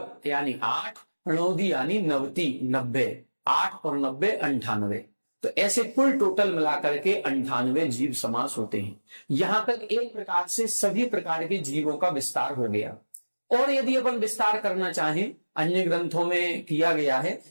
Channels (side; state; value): both; inverted; correlation -1.00